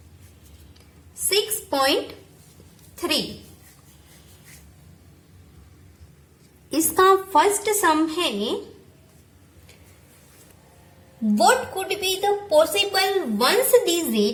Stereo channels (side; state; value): both; identical; correlation 1.00